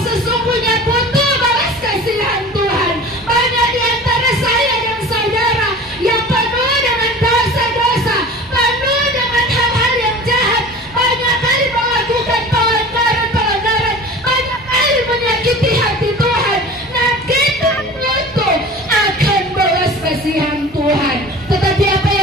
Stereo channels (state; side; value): normal; both; correlation 0.39